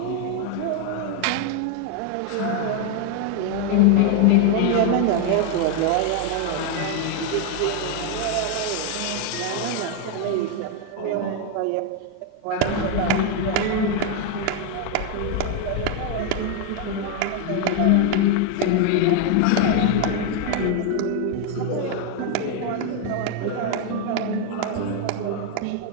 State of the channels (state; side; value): different; both; correlation 0.01